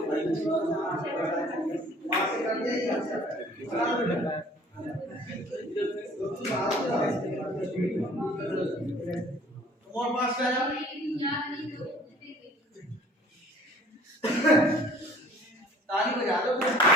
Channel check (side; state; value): both; normal; correlation 0.52